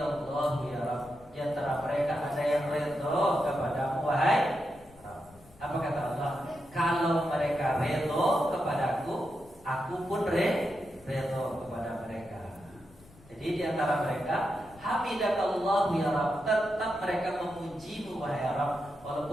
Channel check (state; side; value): noise; left; rumble, 25 dB below the sound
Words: ya Rabb. Di antara mereka ada yang redha kepada wahai Rabb. Apa kata Allah? Kalau mereka redha kepadaku, aku pun redha kepada mereka. Jadi di antara mereka hamidakallahu ya Rabb, tetap mereka memujimu wahai Rabb,